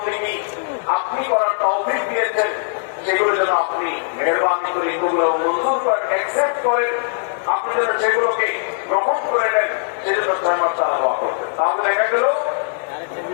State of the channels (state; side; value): silent; right; digital silence